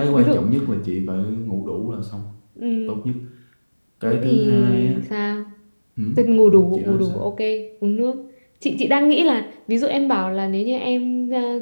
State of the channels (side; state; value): both; inverted; correlation -1.00